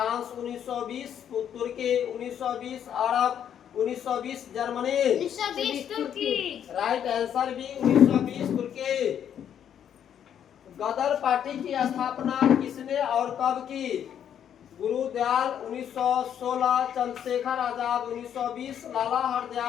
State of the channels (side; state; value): right; quieter; 9.2 dB